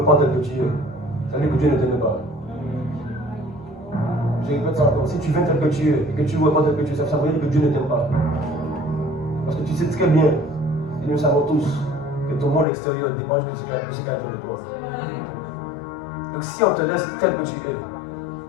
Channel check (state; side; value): drops out; right; at 12.7 s